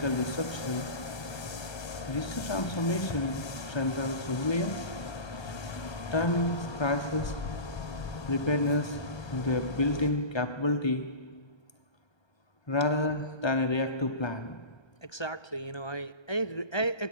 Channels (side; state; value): right; late; 1.3 ms